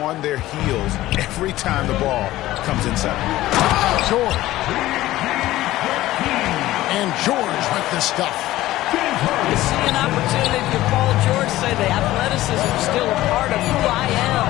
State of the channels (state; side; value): quieter; right; 16.0 dB